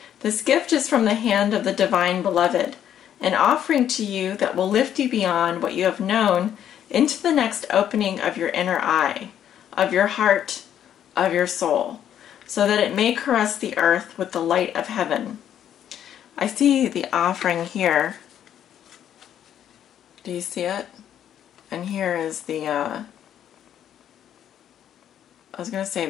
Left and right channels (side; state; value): right; quieter; 10.1 dB